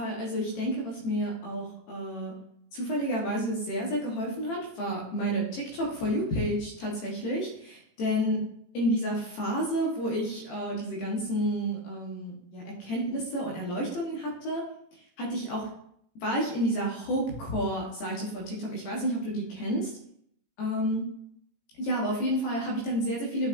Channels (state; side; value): late; right; 18 ms